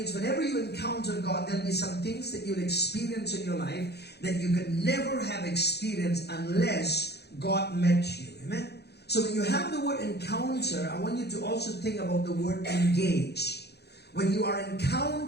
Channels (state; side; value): late; right; 0.48 ms